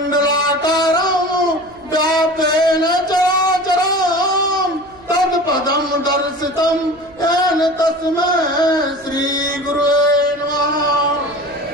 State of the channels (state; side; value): noise; right; hum, 26 dB below the sound